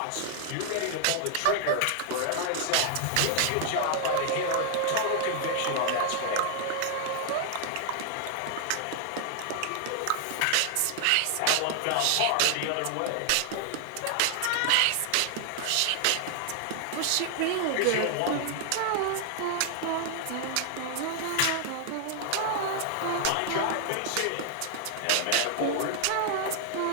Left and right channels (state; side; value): different; both; correlation 0.00